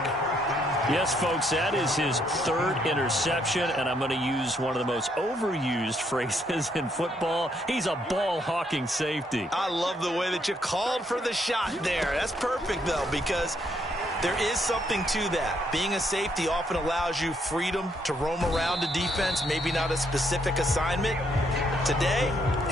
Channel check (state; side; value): normal; both; correlation 0.72